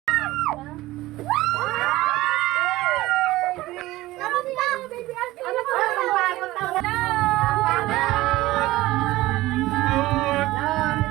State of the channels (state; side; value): quieter; left; 17.7 dB